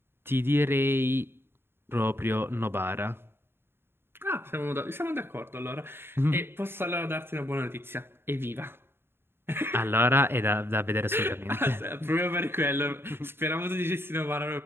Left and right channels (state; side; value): late; left; 0.11 ms